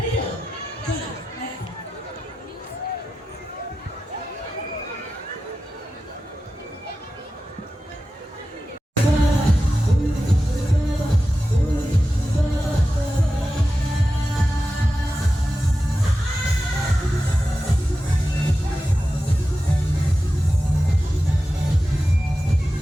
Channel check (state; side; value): normal; both; correlation 0.92